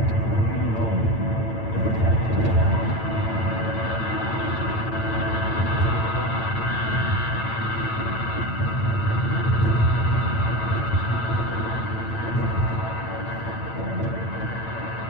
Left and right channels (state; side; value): late; right; 8.9 ms